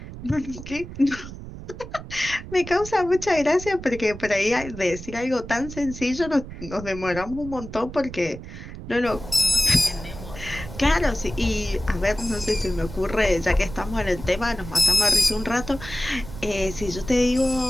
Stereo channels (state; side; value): noise; right; rumble, 12 dB below the sound